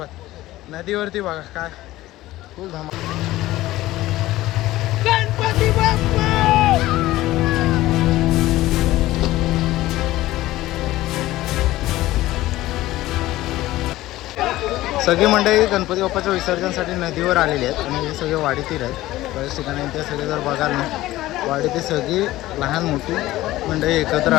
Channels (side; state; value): right; quieter; 16.5 dB